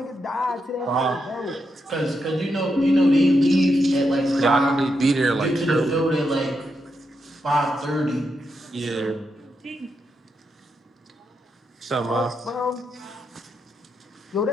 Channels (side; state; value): both; normal; correlation 0.83